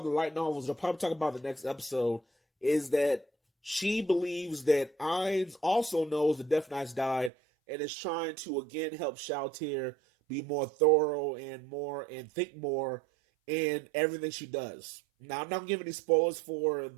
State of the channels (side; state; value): left; drops out; at 7.3 s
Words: the light novels, they'll probably talk about the next episode, is that she believes that Erens also knows the Death Knights died and is trying to again help Shalltear be more thorough and think more in everything she does. Now, I'm not giving any spoilers for